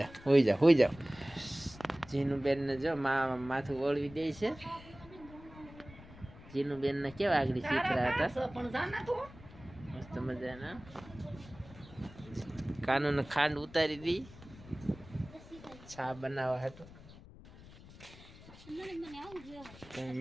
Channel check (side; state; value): left; noise; rumble, 19 dB below the sound